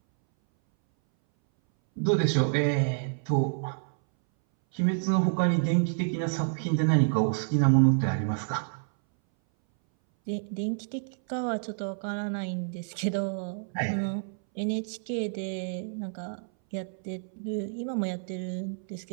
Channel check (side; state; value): left; silent; 59 dB below the other